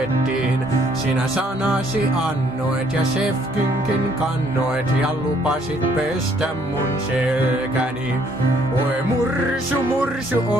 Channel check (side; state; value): both; normal; correlation 0.65